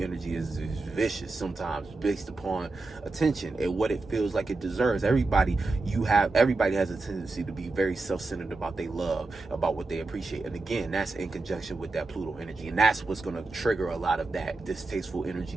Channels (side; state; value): left; quieter; 3.4 dB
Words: is vicious sometimes based upon attention and what it feels like it deserves. Everybody has a tendency to be very self-centered about their love, about what they appreciate. And again, that's in conjunction with that Pluto energy. And that's what's going to trigger a lot of that distasteful energy